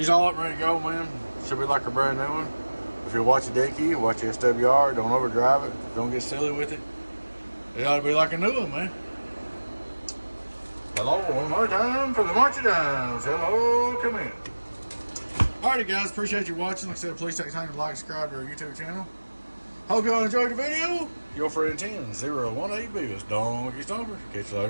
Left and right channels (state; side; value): inverted; both; correlation -1.00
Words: all up ready to go, man. Should be like a brand new one. If you watch the dead key, watch the SWR, don't overdrive it, don't get silly with it. It ought to be like a new one, man. Hello, one more time for the Marchy Downs. Hello, come in. Alrighty guys, appreciate you watching. Like I said, please take time to like, subscribe to our YouTube channel. Hope y'all enjoyed the video. Your friend 10018 Beavis, Donkey Stomper. Catch you